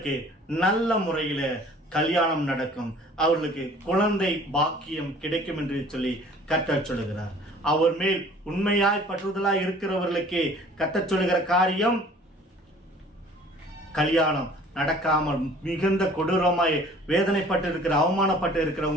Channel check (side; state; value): both; normal; correlation 0.51